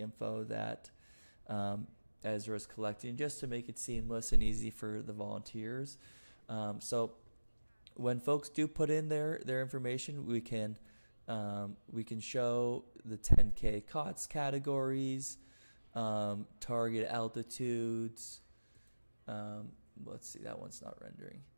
that Ezra is collecting, just to make it seamless and easy for the volunteers. So when folks do put in their information, we can show the 10K COTS categories, target altitudes. Let's see, that one's not rendering.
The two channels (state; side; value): inverted; both; correlation -1.00